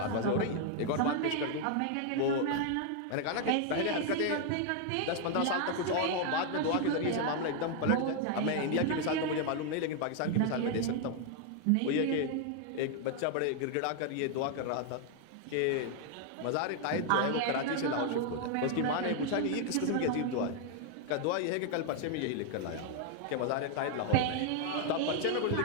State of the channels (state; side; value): different; both; correlation 0.00